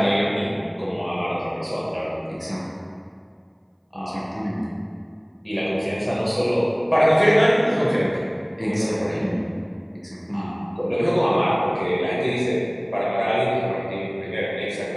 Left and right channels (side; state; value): both; identical; correlation 1.00